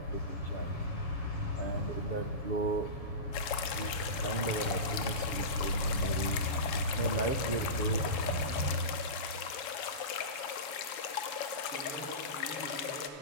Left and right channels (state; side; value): late; right; 7.3 ms